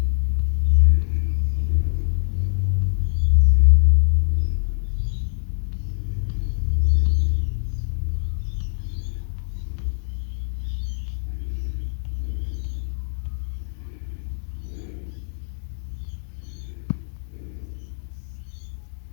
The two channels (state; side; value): silent; right; digital silence